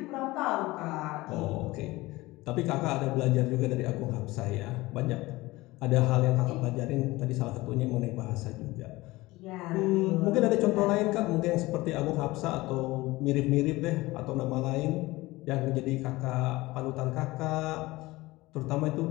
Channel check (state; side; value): quieter; right; 20.0 dB